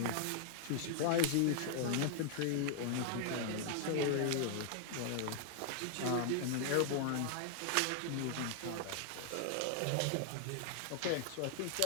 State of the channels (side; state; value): both; different; correlation 0.00